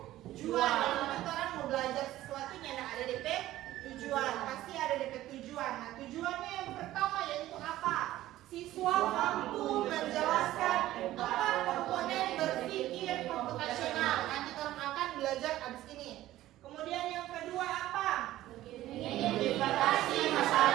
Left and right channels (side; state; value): left; quieter; 14.9 dB